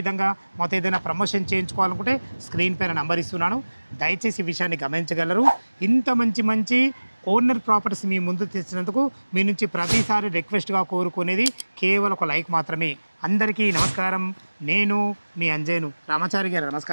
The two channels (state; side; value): inverted; both; correlation -1.00